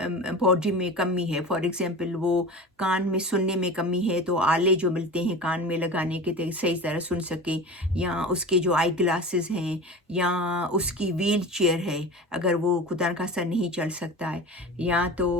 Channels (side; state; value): both; normal; correlation 0.32